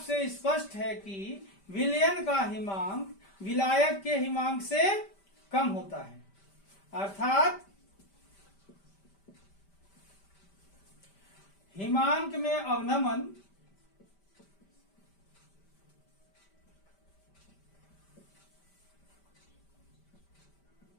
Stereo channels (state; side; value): late; right; 5.1 ms